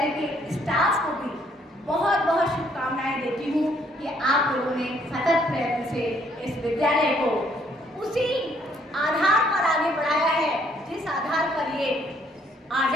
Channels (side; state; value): both; normal; correlation 0.66